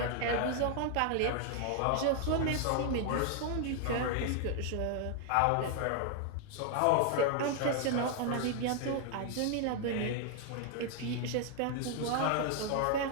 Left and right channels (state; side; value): different; both; correlation 0.00